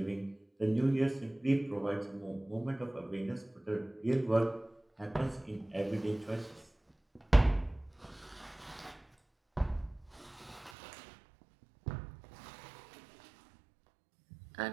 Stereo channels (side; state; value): left; drops out; at 10.7 s